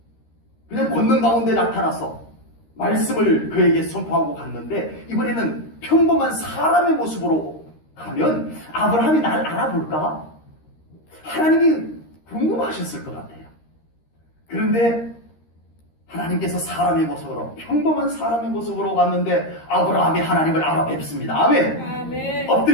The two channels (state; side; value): late; right; 13 ms